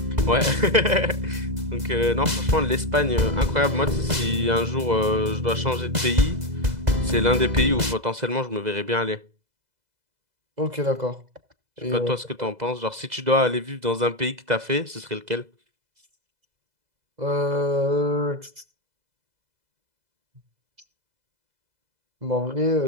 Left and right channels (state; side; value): late; left; 2.0 ms